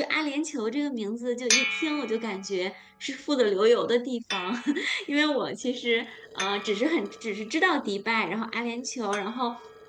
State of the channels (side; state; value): both; identical; correlation 1.00